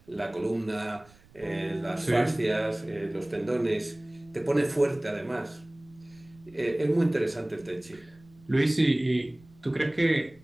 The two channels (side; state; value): right; noise; rumble, 27 dB below the sound